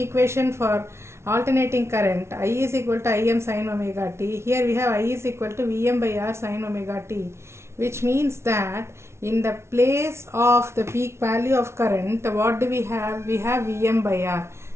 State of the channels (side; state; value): left; late; 0.13 ms